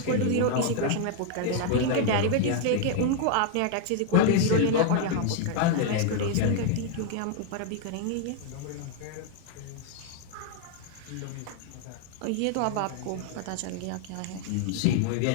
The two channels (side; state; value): both; different; correlation 0.00